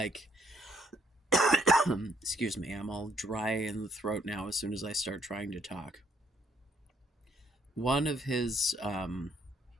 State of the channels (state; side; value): normal; both; correlation 0.68